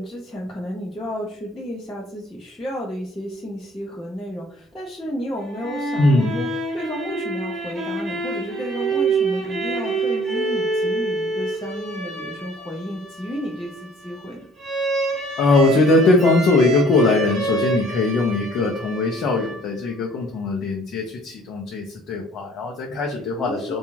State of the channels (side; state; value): both; normal; correlation 0.55